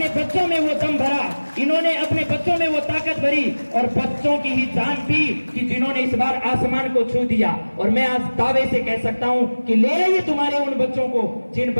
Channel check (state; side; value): inverted; both; correlation -1.00